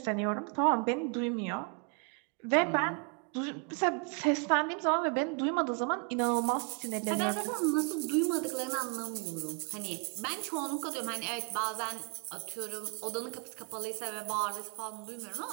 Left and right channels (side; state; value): left; quieter; 37.0 dB